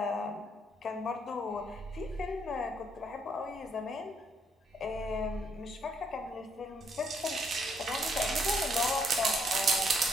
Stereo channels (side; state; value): both; normal; correlation 0.71